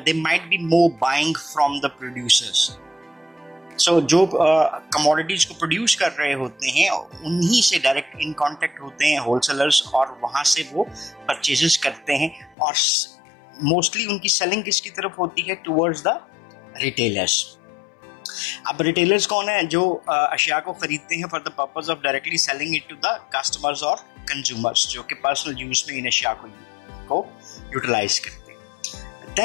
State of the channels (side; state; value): right; drops out; at 12.6 s